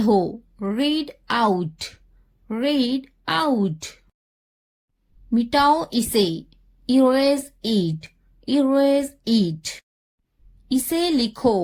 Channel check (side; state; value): both; identical; correlation 1.00